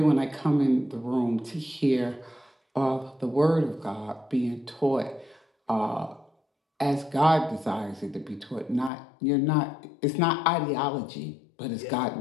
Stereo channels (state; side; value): drops out; right; at 8.9 s